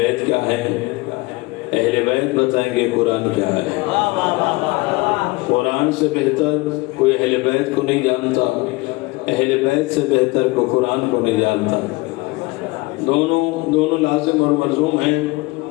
کیا ہے، اہل بیت بتائیں گے قرآن کیا ہے. قرآن سے بہتر کوئی اہل بیت کو نہیں جانتا، اہل بیت سے بہتر کو قرآن کو نہیں جانتا. دونوں لازم اور ملزوم ہیں.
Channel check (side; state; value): right; quieter; 23.0 dB